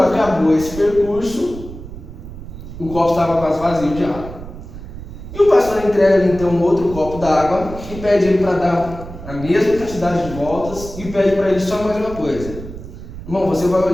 esse percurso, o copo estava quase vazio de água. E o pastor entrega então um outro copo d'água e pede ele para dar a mesma quantidade de voltas e pede para ele só mais uma coisa: irmão, você vai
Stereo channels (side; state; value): right; noise; rumble, 12 dB below the sound